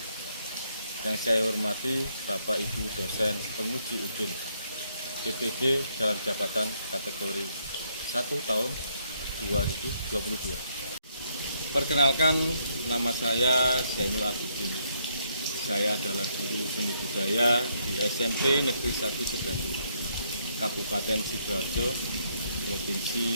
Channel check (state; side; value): inverted; both; correlation -0.73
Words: Yang saya hormati Bapak Ibu dosen penguji udin PPG dalam jabatan kategori 1 tahun 2022. Perkenalkan, nama saya Zainul Abidin. Saya adalah guru seni budaya di SMP Negeri 1 Sedati, Kabupaten Sidoarjo,